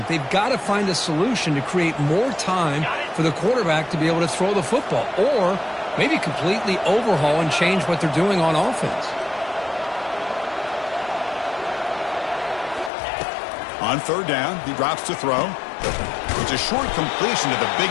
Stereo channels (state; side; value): drops out; right; at 12.9 s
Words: They've got to find a solution to create more time for the quarterback to be able to throw the football, or maybe completely overhaul and change what they're doing on offense. On third down, he drops to throw. It's a short completion to the big